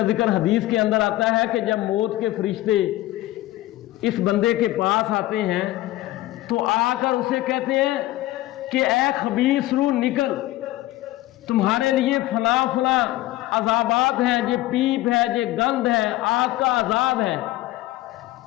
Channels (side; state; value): right; quieter; 16.7 dB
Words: ذکر حدیث کے اندر آتا ہے کہ جب موت کے فرشتے اس بندے کے پاس آتے ہیں تو آ کر اسے کہتے ہیں کہ اے خبیث روح نکل، تمہارے لیے فلاں فلاں عذابات ہیں، یہ پیپ ہے، یہ گند ہے، آگ کا عذاب ہے۔